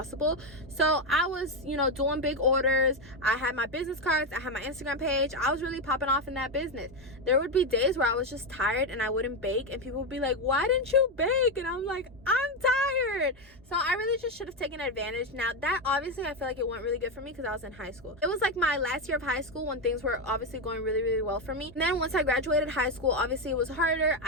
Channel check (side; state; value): both; normal; correlation 0.09